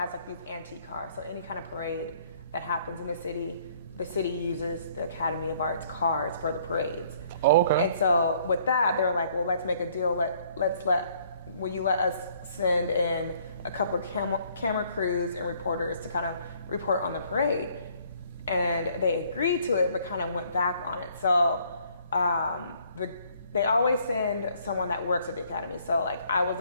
like these antique cars. So any kind of parade that happens in the city uses the Academy of Art's cars for the parades. Oh, okay. And so with that, they were like, well, let's make a deal. Will you let us send in a couple of camera crews and reporters to kind of report on the parade? And they agreed to it, but kind of went back on it. So they always send someone that works at the Academy. So like, I was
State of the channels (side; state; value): both; inverted; correlation -0.62